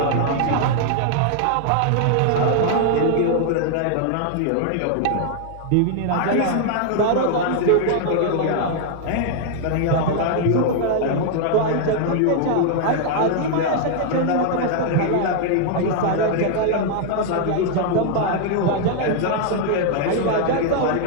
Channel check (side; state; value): both; different; correlation -0.01